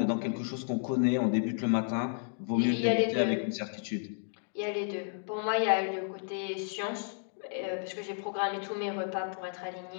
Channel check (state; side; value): silent; right; digital silence